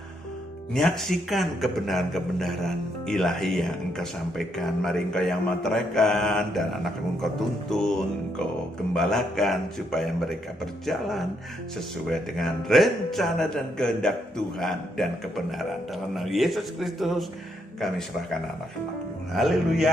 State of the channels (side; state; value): both; normal; correlation 0.76